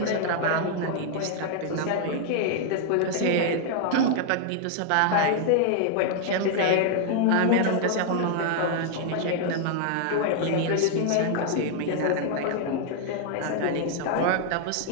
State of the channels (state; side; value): different; both; correlation 0.00